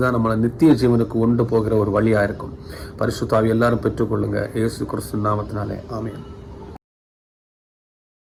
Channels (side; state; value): both; identical; correlation 1.00